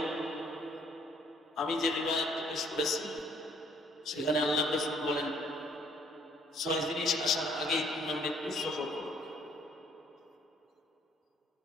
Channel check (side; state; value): both; normal; correlation 0.63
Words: আমি যে রিওয়ায়াত পেশ করেছি সেখানে আল্লাহ রাসূল বলেন 6 জিনিস আসার আগেই তোমরা মৃত্যুর সফর করো,